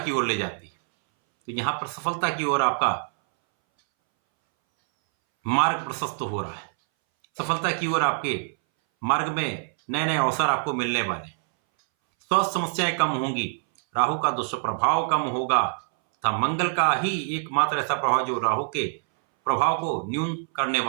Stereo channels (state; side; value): silent; left; 61 dB below the other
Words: ओर ले जाती है। तो यहां पर सफलता की ओर आपका मार्ग प्रशस्त हो रहा है। सफलता की ओर आपके मार्ग में नए नए अवसर आपको मिलने वाले। स्वास्थ्य समस्याएं कम होंगी, राहु का दुष्प्रभाव कम होगा तथा मंगल का ही एकमात्र ऐसा प्रभाव जो राहु के प्रभाव को न्यून करने